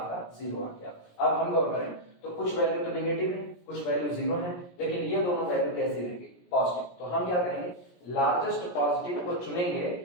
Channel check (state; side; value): late; right; 17 ms